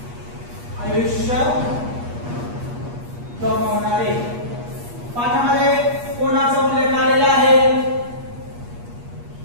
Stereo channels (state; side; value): late; left; 8.4 ms